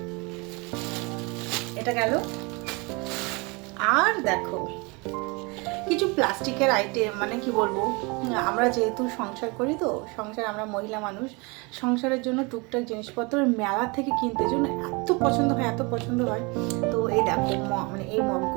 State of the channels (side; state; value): left; quieter; 28.4 dB